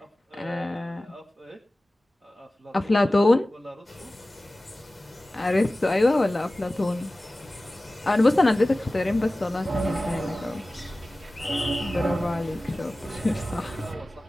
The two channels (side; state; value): both; normal; correlation 0.97